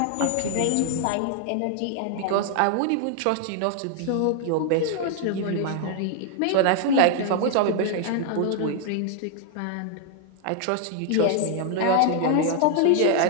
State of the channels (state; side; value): different; both; correlation 0.00